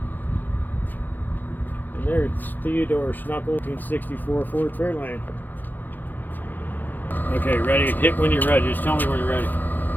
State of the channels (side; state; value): right; late; 0.087 ms